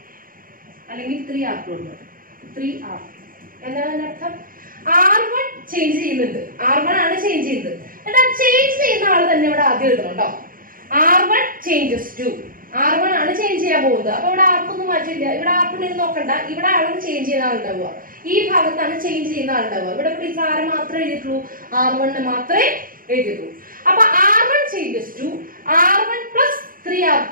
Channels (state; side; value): late; left; 0.41 ms